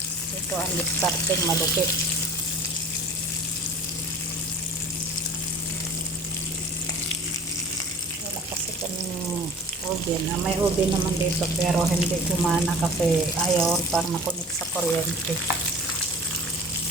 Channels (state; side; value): normal; both; correlation 0.44